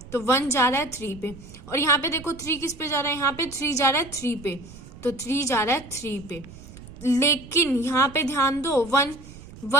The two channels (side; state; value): right; noise; rumble, 17 dB below the sound